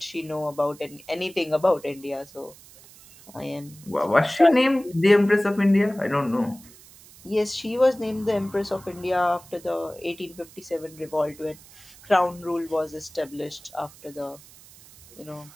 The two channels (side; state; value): right; noise; hiss, 22 dB below the sound